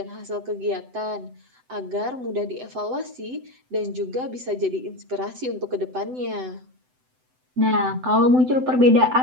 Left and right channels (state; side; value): late; left; 7.9 ms